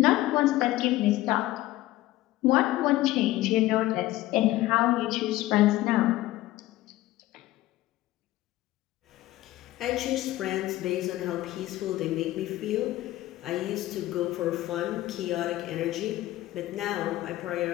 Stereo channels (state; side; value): quieter; right; 16.2 dB